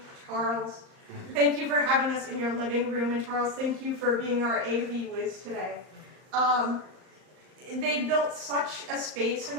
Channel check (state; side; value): late; left; 38 ms